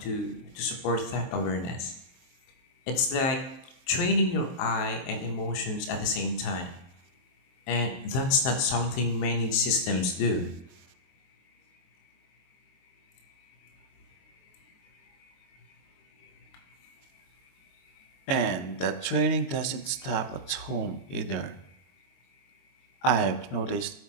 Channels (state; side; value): late; right; 23 ms